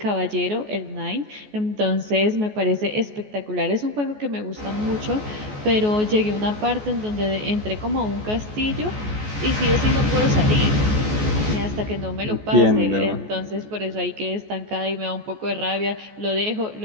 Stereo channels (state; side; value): late; left; 14 ms